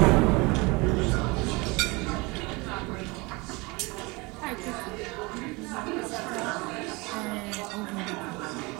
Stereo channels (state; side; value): quieter; left; 25.7 dB